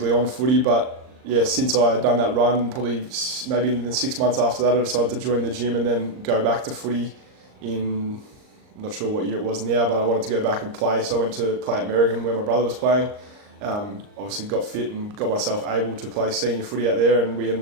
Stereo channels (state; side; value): late; left; 39 ms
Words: on footy, but since I had done that run, probably maybe in the 6 months after that, I decided to join the gym and then go back to footy in, I'm not sure what year it was now, but I wanted to go back and play. So I went to play at Merrigan where my brother was playing. Obviously got fit and got myself able to play senior footy out there, and we